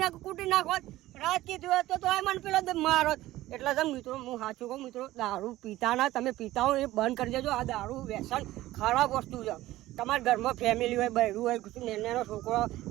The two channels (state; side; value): quieter; left; 16.2 dB